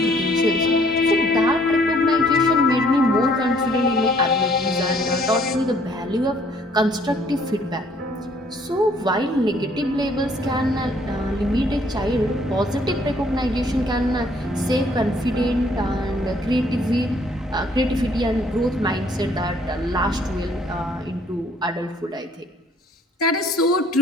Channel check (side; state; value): both; normal; correlation 0.62